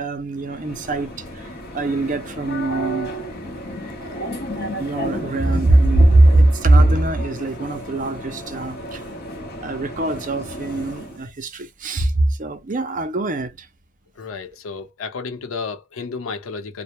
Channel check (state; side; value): normal; both; correlation 0.83